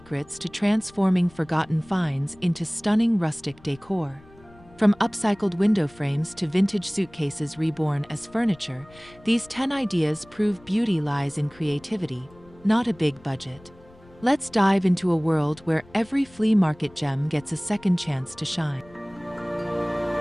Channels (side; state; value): left; noise; rumble, 25 dB below the sound